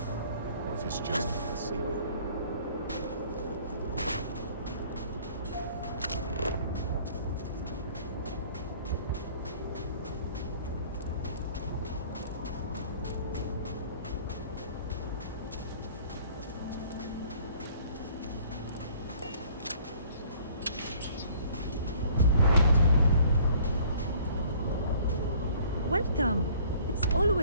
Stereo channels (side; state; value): both; inverted; correlation -0.55